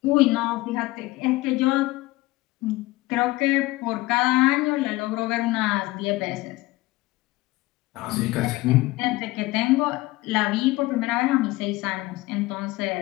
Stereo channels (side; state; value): right; quieter; 19.5 dB